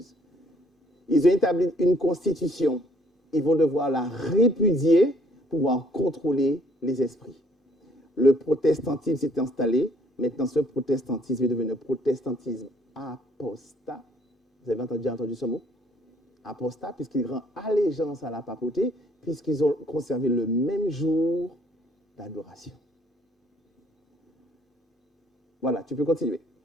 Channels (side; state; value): both; normal; correlation 0.63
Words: Ils ont établi une constitution. Ils vont devoir la répudier pour pouvoir contrôler les esprits. Le protestantisme s'est installé. Maintenant, ce protestantisme est devenu un protestantisme apostat. Vous avez déjà entendu ce mot? Apostat, puisqu'il rend allégeance à la papauté, puisqu'ils ont conservé le même jour d'adoration. Voilà, tu peux continuer.